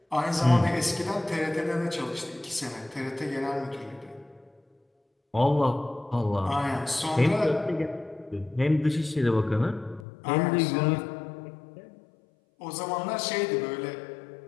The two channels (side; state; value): right; drops out; at 10.1 s